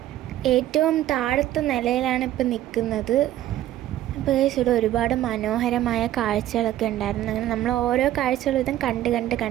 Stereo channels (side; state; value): left; quieter; 13.4 dB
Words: ഏറ്റവും താഴത്തെ നിലയിലാണ് ഇപ്പം നിൽക്കുന്നത്. അപ്പോൾ ഗൈസ് ഇവിടെ ഒരുപാട് മനോഹരമായ കാഴ്ചകളൊക്കെ ഉണ്ടായിരുന്നു. അങ്ങനെ നമ്മൾ ഓരോ കാഴ്ചകളും ഇതും